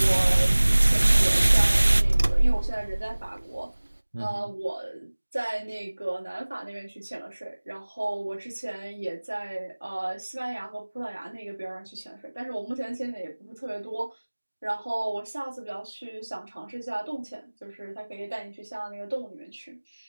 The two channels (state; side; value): inverted; both; correlation -1.00